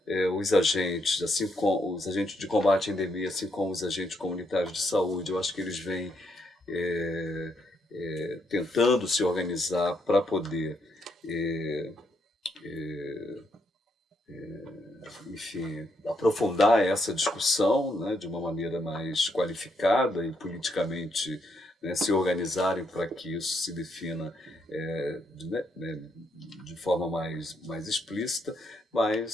Os agentes, assim como os agentes de combate à endemia, assim como os agentes comunitários de saúde, eu acho que eles vêm tentando se organizar para poder, enfim, aprofundar essa discussão, né, de uma maneira mais qualificada e politicamente, né, se organizarem para que isso se defina de forma mais explícita,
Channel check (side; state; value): both; normal; correlation 0.77